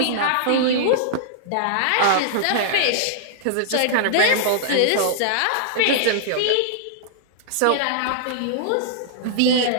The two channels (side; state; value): both; different; correlation -0.02